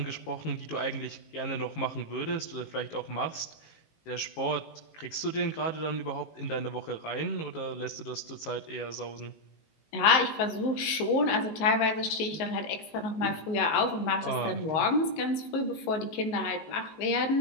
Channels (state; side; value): late; right; 19 ms